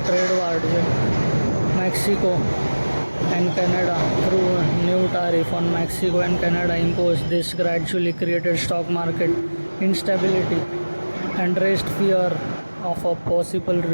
war with Mexico and Canada through a new tariff on Mexico and Canada imposed. This gradually created stock market instability and raised fear of a possible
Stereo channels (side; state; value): both; inverted; correlation -1.00